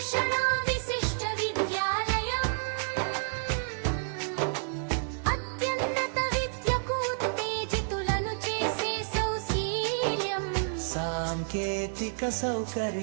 విశిష్ట విద్యాలయం. అత్యున్నత విద్యకు ఉత్తేజితులను చేసే సౌశీల్యం. సాంకేతిక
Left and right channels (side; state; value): left; silent; digital silence